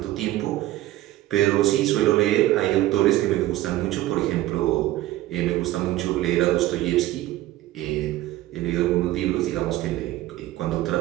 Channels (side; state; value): left; quieter; 15.6 dB